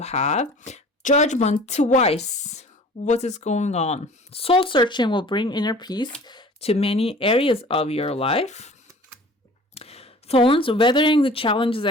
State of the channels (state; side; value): normal; both; correlation 0.46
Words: Judgment twice. What is going on? Soul searching will bring inner peace to many areas of your life. Thorns, weathering the challenges